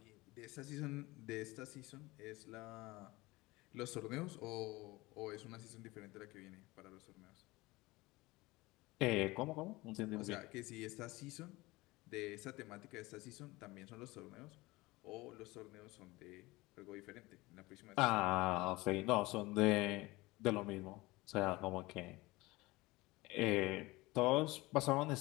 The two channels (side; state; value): right; quieter; 21.3 dB